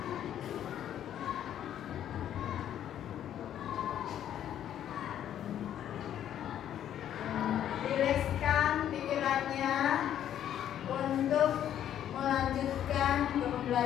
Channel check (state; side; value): quieter; right; 10.6 dB